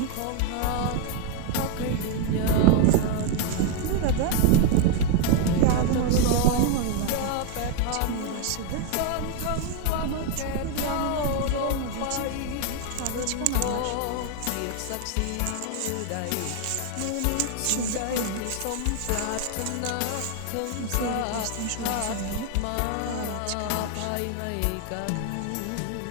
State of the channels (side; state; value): both; different; correlation 0.01